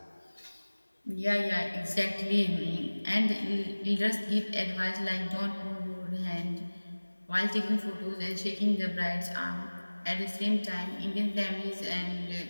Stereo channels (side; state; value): both; inverted; correlation -1.00